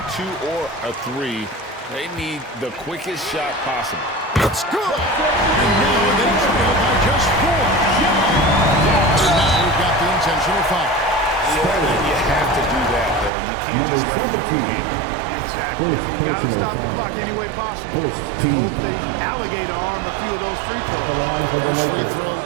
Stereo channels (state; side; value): drops out; left; at 13.3 s